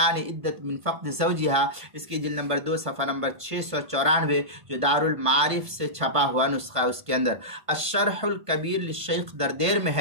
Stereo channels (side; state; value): left; late; 1.5 ms